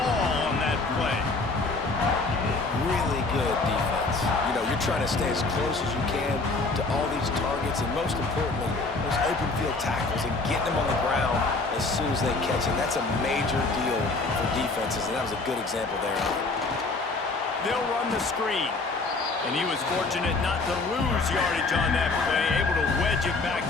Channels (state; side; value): quieter; right; 3.6 dB